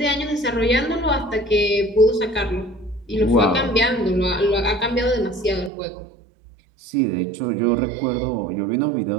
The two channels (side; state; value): left; drops out; at 5.7 s